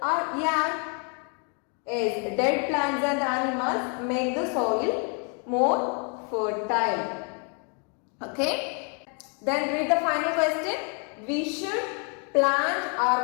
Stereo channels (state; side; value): quieter; right; 38.5 dB